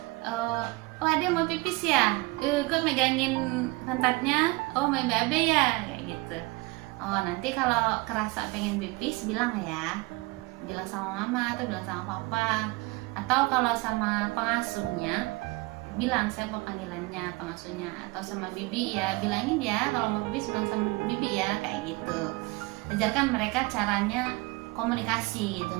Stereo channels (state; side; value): quieter; left; 23.8 dB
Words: oh ada yang mau pipis ya, kok megangin pantatnya, oh main BAB ya, kayak gitu. Oh nanti kalau kerasa pengen pipis bilang ya, bilang sama mama atau bilang sama papa, atau kalau sama pengasuhnya bilang siapa panggilannya pengasuhnya, atau sama bibi ya bilangin ya kalau mau pipis bilang sama bibi ya, kayak gitu. Ajarkan mereka caranya komunikasi gitu,